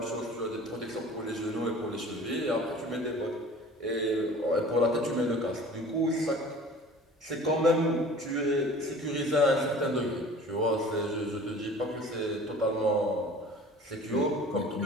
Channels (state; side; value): normal; both; correlation 0.44